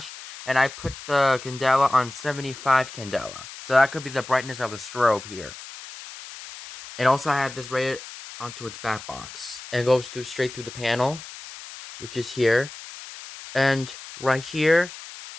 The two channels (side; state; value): left; noise; hiss, 14 dB below the sound